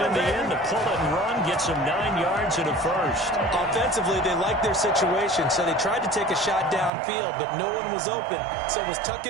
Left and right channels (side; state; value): left; drops out; at 6.9 s